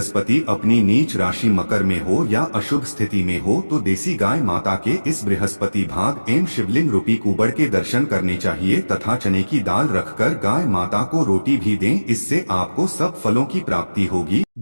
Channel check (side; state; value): both; inverted; correlation -1.00